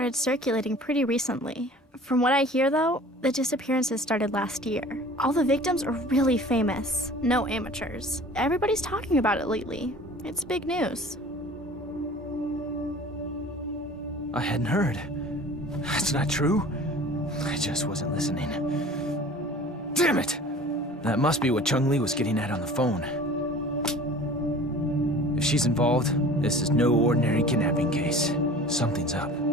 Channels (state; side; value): normal; both; correlation 0.44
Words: circulating pretty recently. From what I hear, though, the disappearances started last year. All the victims are really famous. No amateurs. Everybody's talking about it lately. It's big news. I hadn't heard. That's not true. I just wasn't listening. Damn it! That must be what Chung-Li was getting at on the phone. If she's involved, this is no ordinary kidnapping case. Something's up.